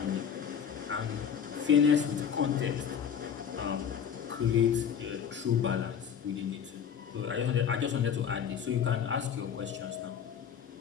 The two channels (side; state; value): right; quieter; 7.9 dB